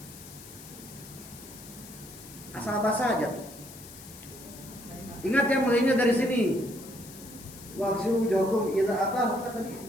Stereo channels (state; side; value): noise; left; hiss, 16 dB below the sound